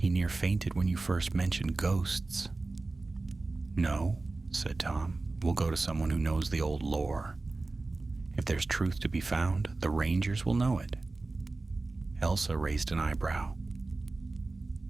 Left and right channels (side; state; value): left; quieter; 3.4 dB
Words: near fainted when you first mentioned ghosts." "No," said Tom. "We'll go to someone who knows the old lore. If there's truth to be found, the rangers will know it." Elsa raised an eyebrow.